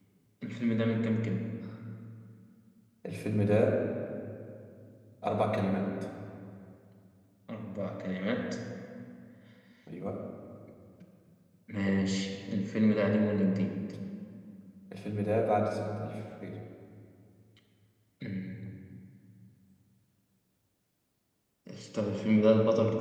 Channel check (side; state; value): both; identical; correlation 1.00